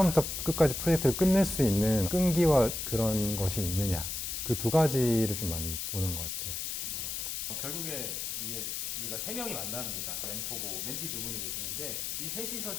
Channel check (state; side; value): noise; left; hiss, 3 dB below the sound